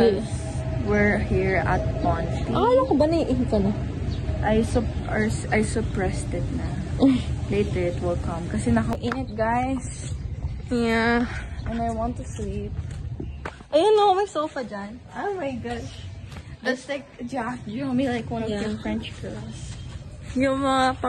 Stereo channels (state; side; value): identical; both; correlation 1.00